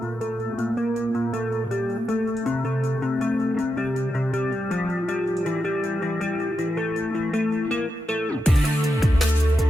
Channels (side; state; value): both; normal; correlation 0.86